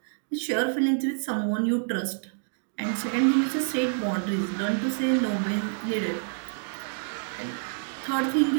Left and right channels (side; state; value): left; silent; digital silence